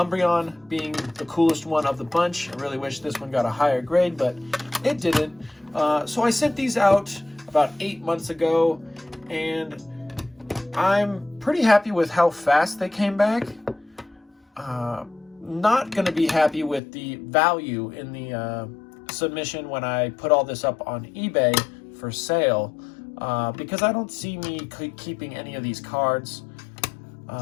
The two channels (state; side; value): drops out; right; at 16.8 s